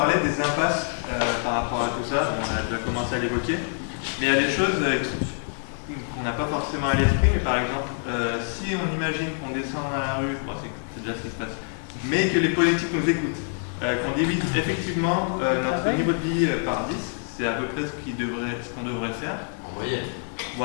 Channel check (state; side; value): silent; right; 59 dB below the other